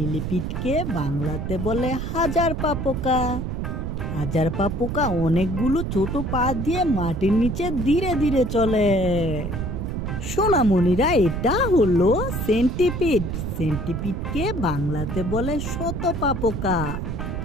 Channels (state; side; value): noise; right; rumble, 3 dB below the sound